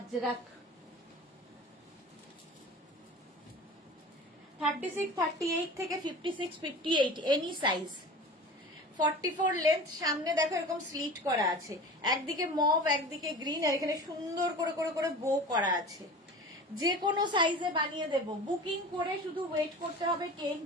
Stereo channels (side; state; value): both; normal; correlation 0.36